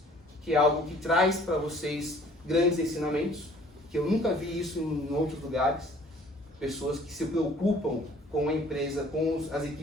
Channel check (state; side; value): normal; both; correlation 0.54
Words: que é algo que traz para vocês grandes ensinamentos, que eu nunca vi isso em outros lugares. Pessoas que se preocupam com a empresa, com as